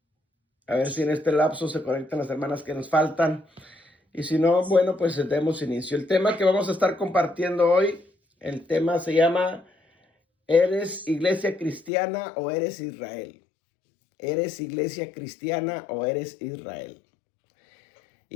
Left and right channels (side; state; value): right; drops out; at 11.9 s